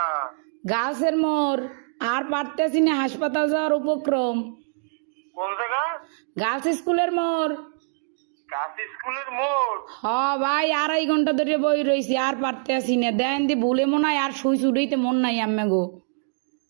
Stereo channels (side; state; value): left; silent; digital silence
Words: গাছের মোড়, আর পারতেছি না, হাসপাতাল যাওয়ার উপক্রম। কোন জায়গা? গার্লস স্কুলের মোড়। কাশি স্কুলের মোড়। হ ভাই, 2.5 ঘন্টা ধরে বই রয়েছি, আর পারতেছি না। দেন দি ভুলে মনে হয় আর সুই চুড়াইতে মন নাই আম্মে গো।